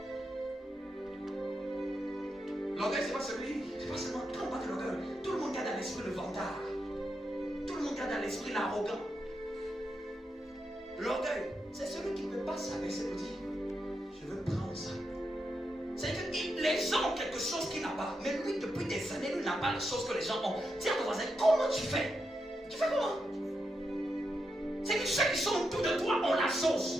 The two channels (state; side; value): normal; both; correlation 0.85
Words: L'orgueil, c'est pas seulement, quand on parle de l'orgueil, tout le monde garde à l'esprit le vantard. Tout le monde garde à l'esprit l'arrogant. L'orgueil, c'est celui qui ne peut pas s'abaisser pour dire, je veux prendre ça. C'est que les gens ont quelque chose qu'il n'a pas. Mais lui, depuis des années, lui n'a pas les choses que les gens ont. Dis à ton voisin, comment tu fais? Tu fais comment? C'est que ceux qui sont autour de toi ont la